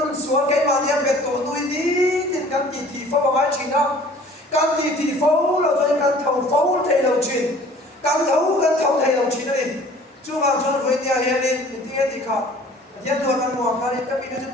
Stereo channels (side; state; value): both; normal; correlation 0.50